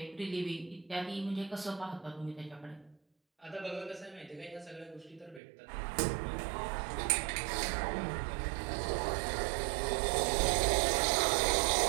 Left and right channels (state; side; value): drops out; left; at 5.4 s